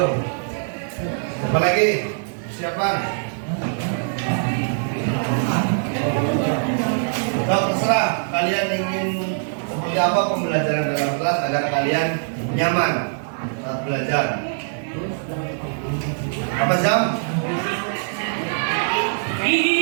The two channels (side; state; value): left; silent; digital silence